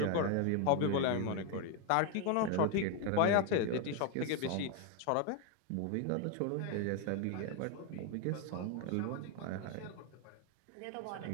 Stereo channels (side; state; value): both; different; correlation 0.01